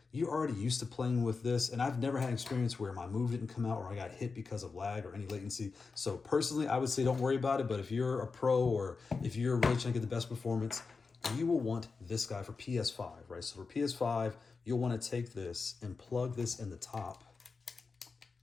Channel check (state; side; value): quieter; right; 4.5 dB